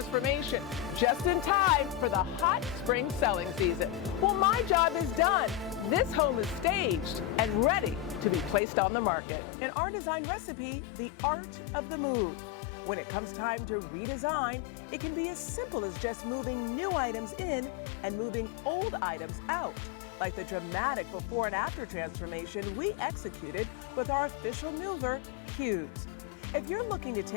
just in time for the hot spring selling season. Well, my job is done. This home is staged and ready to be placed on the market. In our design recipe, the art of the move. When it comes time to redesign, it can be as simple as just moving new items in and moving old items out, like the dramatic before and after transformation we executed with our official mover, Cubes. If you're looking to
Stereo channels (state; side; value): drops out; right; at 8.6 s